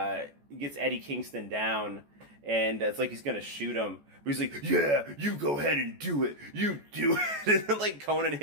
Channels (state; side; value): late; left; 14 ms